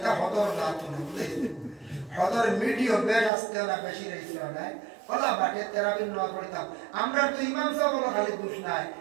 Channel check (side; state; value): left; drops out; at 3.3 s